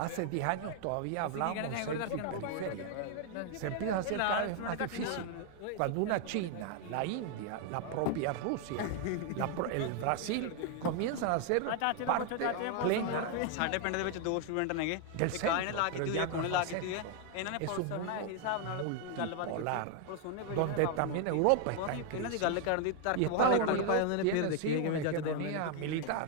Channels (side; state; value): both; different; correlation 0.00